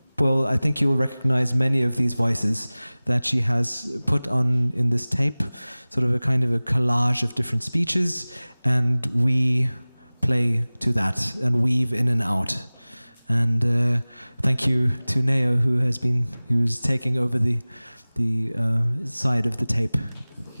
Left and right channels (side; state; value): both; inverted; correlation -0.99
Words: well, I think you'll recognize many of these voices that she has put on in this tape, sort of a kind of a collage of different speeches, and we play to that and weave in and out. And thank you to Neo, who's taking over the side of the tape.